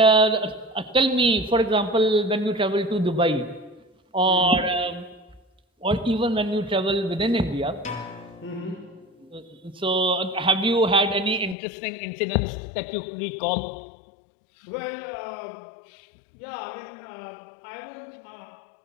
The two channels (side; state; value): right; drops out; at 11.6 s